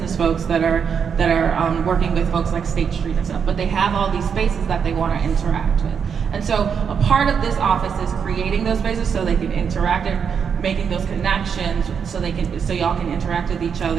folks that are working with folks like State Street and stuff, but they have all these spaces that they want to interact with. And so a part of this office is creating those spaces so they can interact and making those connections so y'all can interact with each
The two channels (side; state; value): left; quieter; 6.9 dB